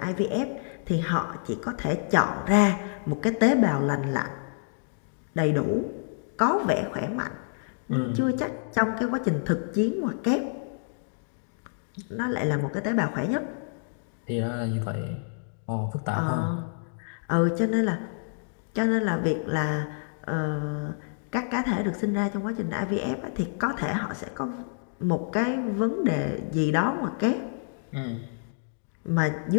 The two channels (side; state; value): right; silent; digital silence